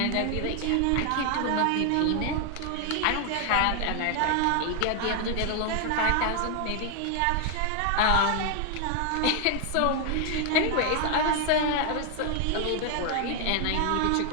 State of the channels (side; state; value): both; different; correlation 0.00